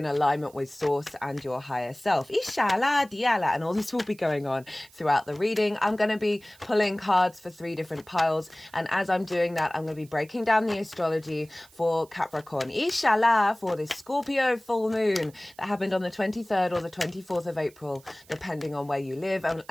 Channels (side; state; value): right; noise; hiss, 26 dB below the sound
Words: alignment with source and your higher self. And all this will be going on throughout the reading. I'm going to be pulling cards for 3 different piles, and as I'm doing that, I'm going to be breaking down the astrology for Capricorn. For this Scorpio full moon that happened on the 23rd or the 24th of April, depending on where you live. And